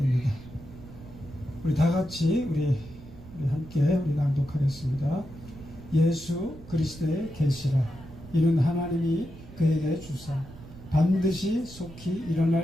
우리 다 같이 우리 함께 우리 낭독하겠습니다. 예수 그리스도의 계시라. 이는 하나님이 그에게 주사 반드시 속히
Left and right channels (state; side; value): noise; right; rumble, 17 dB below the sound